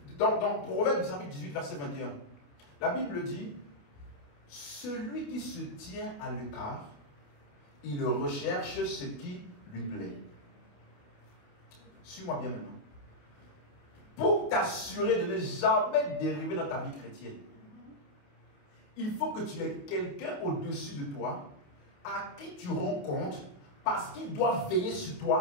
dans Proverbe chapitre 18, verset 21, la Bible dit, celui qui se tient à l'écart, il recherche ce qui lui plaît. Suis-moi bien maintenant. Pour t'assurer de ne jamais dériver dans ta vie chrétienne, il faut que tu aies quelqu'un au-dessus de toi à qui tu rends compte parce qu'il doit veiller sur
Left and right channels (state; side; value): late; right; 28 ms